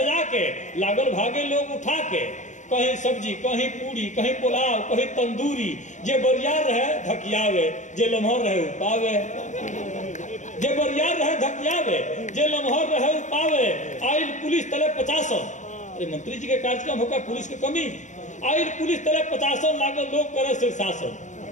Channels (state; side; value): late; right; 0.35 ms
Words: के, लागल भागे लोग उठा के। कहीं सब्जी, कहीं पूरी, कहीं पुलाव, कहीं तंदूरी। जे बरियार रहे धकियावे, जे लम्हर रहे उपावे। जे बरियार रहे धकियावे, जे लम्हर रहे उपावे। आइल पुलिस तले 50। अरे मंत्री जी के कार्यक्रम होगा, पुलिस की कमी। आइल पुलिस तले 50 लागल लोग करे